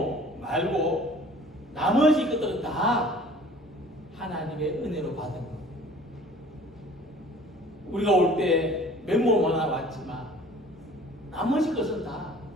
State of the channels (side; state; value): both; normal; correlation 0.49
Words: 말고 나머지 것들은 다 하나님의 은혜로 받은 겁니다. 우리가 올 때 맨몸 하나 왔지만 나머지 것은 다